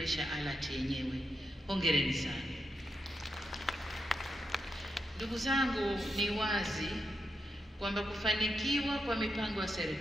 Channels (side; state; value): both; normal; correlation 0.85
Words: ALAT yenyewe. Hongereni sana. Ndugu zangu, ni wazi kwamba kufanikiwa kwa mipango ya